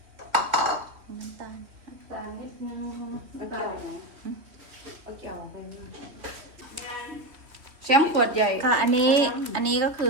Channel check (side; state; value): left; late; 3.1 ms